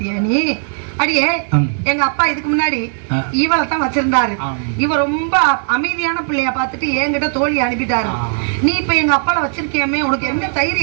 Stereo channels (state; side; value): silent; left; 63 dB below the other